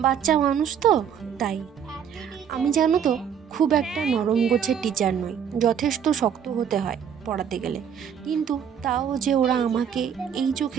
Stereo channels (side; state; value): left; quieter; 8.1 dB